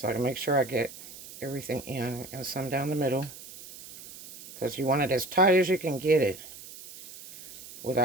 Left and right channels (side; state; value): right; noise; hiss, 16 dB below the sound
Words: I can make sure I get everything in and some down the middle. Because you want it as tight as you can get it